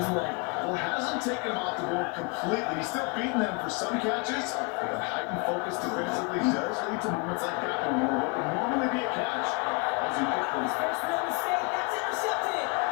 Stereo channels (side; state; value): right; quieter; 30.9 dB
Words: way. Well, hasn't taken him off the board completely. He's still beating them for some catches, but the heightened focus defensively does lead to moments like that one where what would normally be a catch as he gets His first real mistake, that's intercepted.